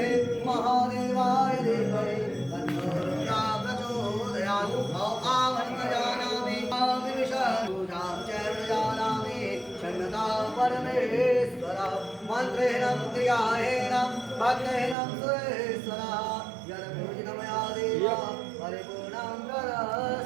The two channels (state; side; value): drops out; left; at 15.0 s